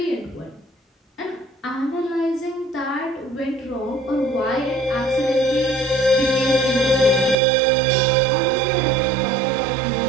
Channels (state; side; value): drops out; left; at 7.4 s